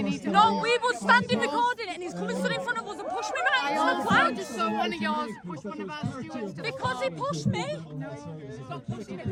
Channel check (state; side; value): identical; both; correlation 1.00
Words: No, we were standing recording it and he's coming stood in front of us and pushed me right into the flag. Just saw one of yours push one of our stewards. Because he pushed me. Stop pushing